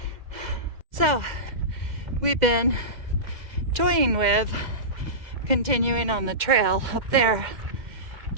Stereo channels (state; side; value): late; left; 2.0 ms